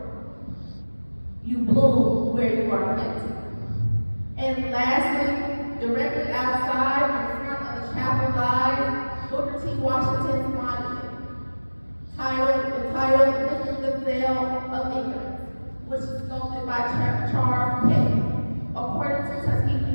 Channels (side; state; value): both; inverted; correlation -1.00